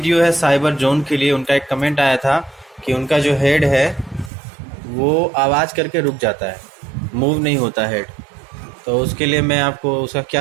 है साइबर जोन के लिए। उनका एक कमेंट आया था कि उनका जो हेड है वो आवाज़ करके रुक जाता है, मूव नहीं होता हेड। तो उसके लिए मैं आपको उसका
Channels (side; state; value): left; drops out; at 4.3 s